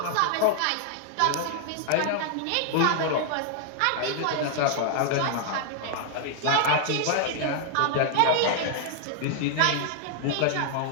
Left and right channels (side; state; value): both; different; correlation 0.00